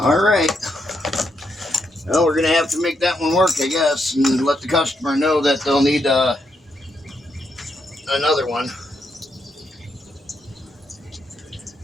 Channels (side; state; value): both; normal; correlation 0.79